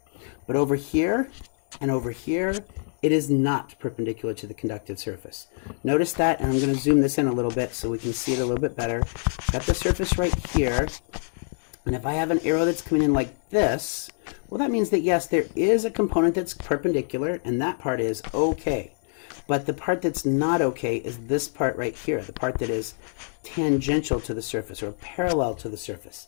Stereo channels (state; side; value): silent; right; 61 dB below the other